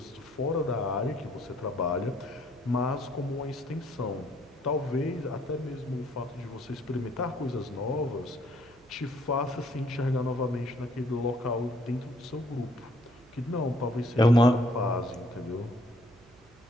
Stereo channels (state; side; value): noise; right; hum, 27 dB below the sound